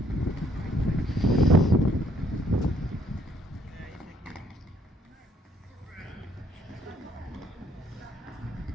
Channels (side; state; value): both; normal; correlation 0.66